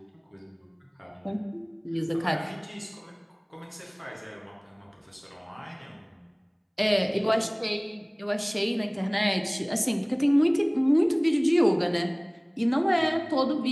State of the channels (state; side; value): identical; both; correlation 1.00